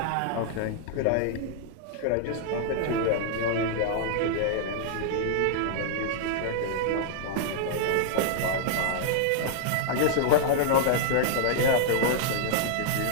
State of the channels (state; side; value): different; both; correlation -0.01